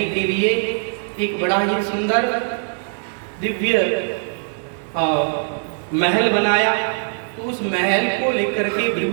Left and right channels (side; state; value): left; silent; 62 dB below the other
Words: के लिए एक बड़ा ही सुंदर दिव्य महल बनाया। तो उस महल को लेकर के